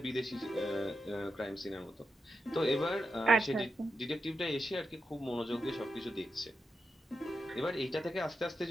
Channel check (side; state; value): both; normal; correlation 0.88